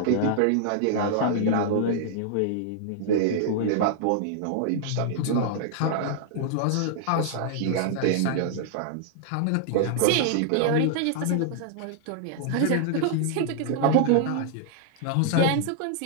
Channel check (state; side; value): different; both; correlation -0.01